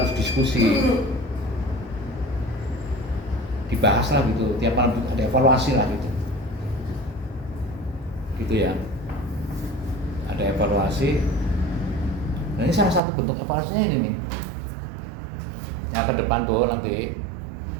diskusi, dibahas lah gitu. Tiap malam ada evaluasi lah gitu ya. Ada evaluasi. Nah ini salah satu bentuk evaluasinya ini nih. Yang ke depan tuh nanti.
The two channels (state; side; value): drops out; left; at 13.0 s